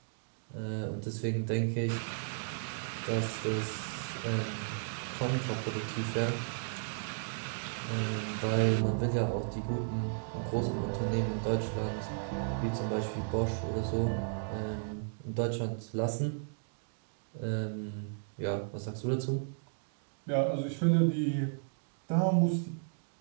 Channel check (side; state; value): left; silent; digital silence